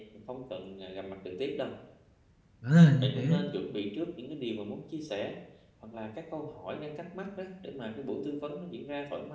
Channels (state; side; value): identical; both; correlation 1.00